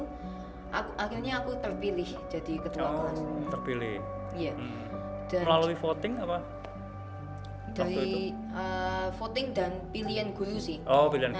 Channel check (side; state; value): both; identical; correlation 1.00